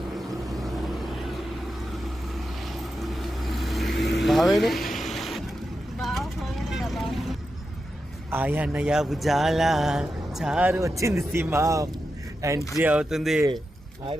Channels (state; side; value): normal; both; correlation 0.89